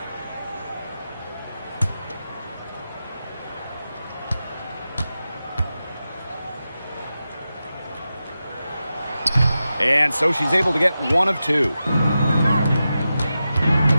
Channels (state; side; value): inverted; both; correlation -0.92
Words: And so she's able to get 1 of 2.